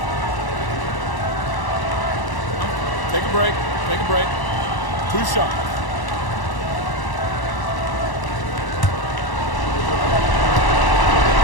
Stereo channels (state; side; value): late; right; 1.0 ms